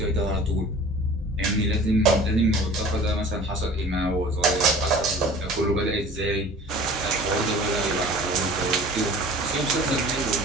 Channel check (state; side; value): normal; both; correlation 0.44